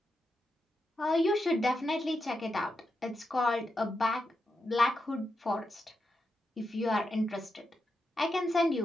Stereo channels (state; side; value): normal; both; correlation 0.86